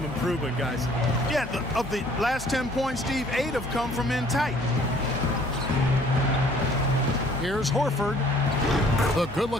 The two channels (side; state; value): both; normal; correlation 0.57